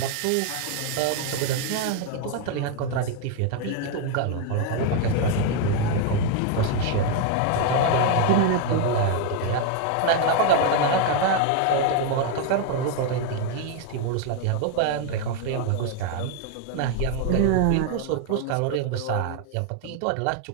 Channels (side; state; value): both; different; correlation 0.01